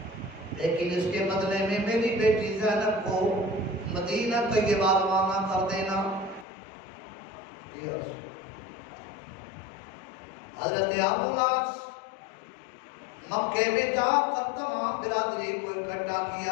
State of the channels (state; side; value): drops out; right; at 6.5 s